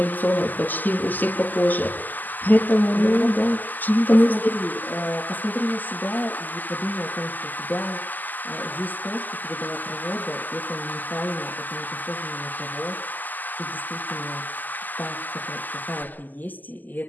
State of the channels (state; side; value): late; right; 0.085 ms